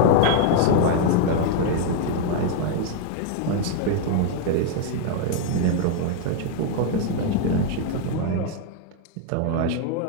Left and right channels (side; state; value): both; different; correlation 0.01